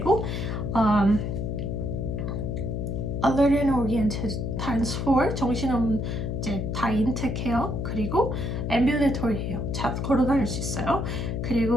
alert and oriented times 4, 정신없는 이제 다 인텍해요. 그리고 ambulatory해요. 걸어 다닐 수 있어요.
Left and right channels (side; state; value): left; noise; hum, 2 dB below the sound